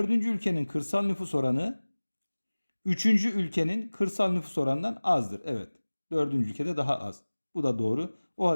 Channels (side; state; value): both; inverted; correlation -1.00